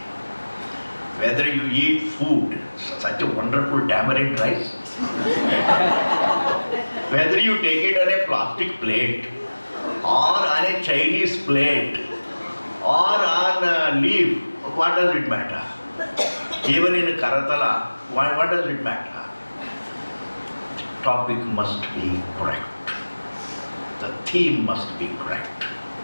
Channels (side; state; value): both; inverted; correlation -1.00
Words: Whether you eat food, such a wonderful tamarind rice, whether you take it on a plastic plate, or on a Chinese plate, or on a leaf, what does it matter? Even in Karatala, what does it matter? The topic must be correct. The theme must be correct.